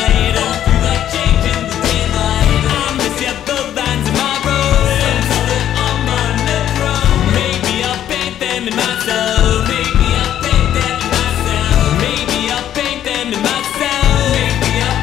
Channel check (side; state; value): right; quieter; 11.0 dB